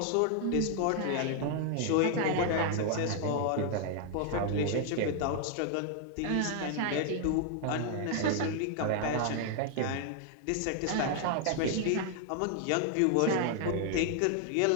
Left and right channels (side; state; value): both; different; correlation 0.00